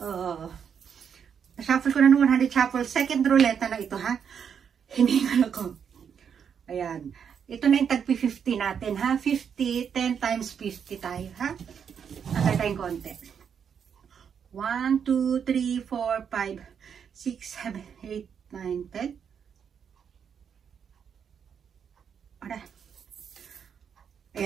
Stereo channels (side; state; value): left; quieter; 7.4 dB